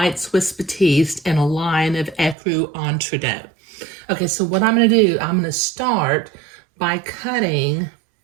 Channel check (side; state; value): left; drops out; at 2.4 s